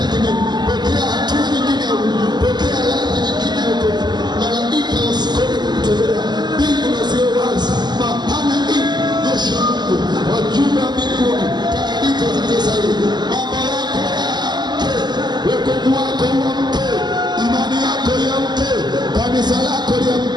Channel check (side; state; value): left; late; 0.21 ms